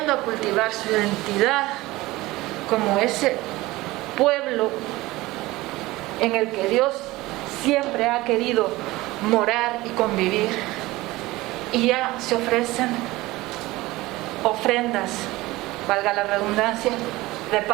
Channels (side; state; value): left; quieter; 19.3 dB